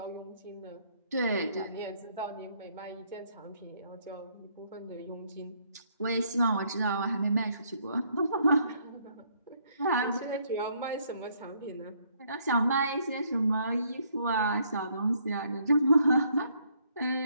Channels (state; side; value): inverted; both; correlation -0.68